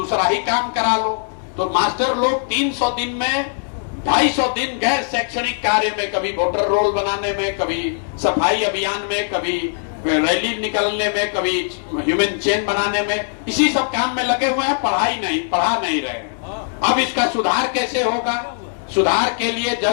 ही काम करा लो। तो मास्टर लोग 300 दिन में 250 दिन गैर शैक्षणिक कार्य में, कभी वोटर रोल बनाने में, कभी सफाई अभियान में, कभी रैली निकालने में, कभी ह्यूमन चेन बनाने में, इसी सब काम में लगे हुए हैं, पढ़ा नहीं रहे। अब इसका सुधार कैसे होगा। सुधार के लिए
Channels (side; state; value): right; silent; digital silence